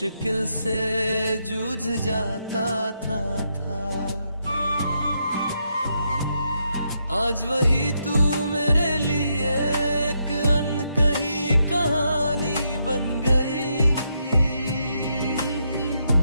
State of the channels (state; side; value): inverted; both; correlation -0.79